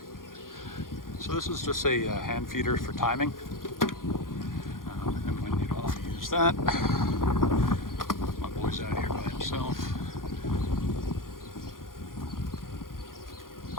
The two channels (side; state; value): right; late; 0.91 ms